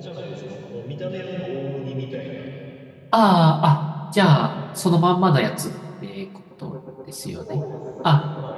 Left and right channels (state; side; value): identical; both; correlation 1.00